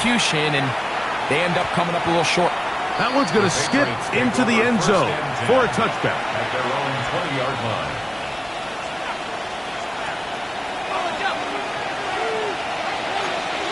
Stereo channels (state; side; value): noise; right; hum, 30 dB below the sound